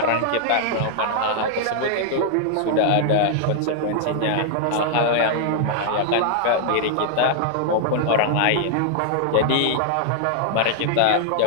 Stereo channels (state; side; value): different; both; correlation -0.01